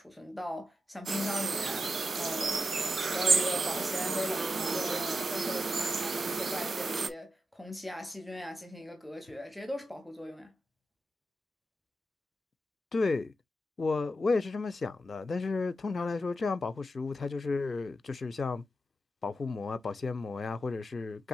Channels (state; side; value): normal; both; correlation 0.88